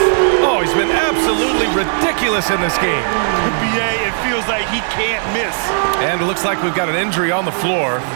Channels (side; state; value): left; silent; digital silence